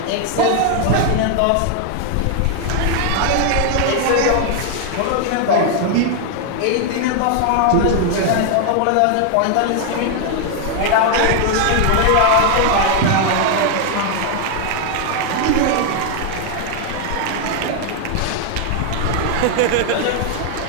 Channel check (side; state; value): both; different; correlation 0.00